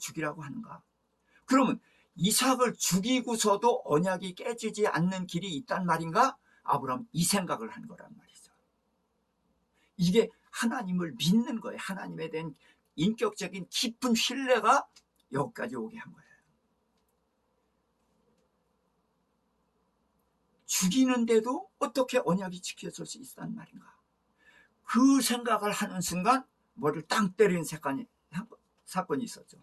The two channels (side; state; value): both; identical; correlation 1.00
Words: 하는가? 그러면 이삭을 죽이고서도 언약이 깨지지 않는 길이 있단 말인가? 아브라함 이 생각을 한 거란 말이죠. 이게 하나님을 믿는 거예요. 하나님에 대한 인격적인 깊은 신뢰가 여기까지 오게 한 거예요. 죽이는데도 어떻게 언약이 지켜질 수 있단 말인가? 그 생각을 하는 순간 머리를 땅 때리는 사건이 있었죠.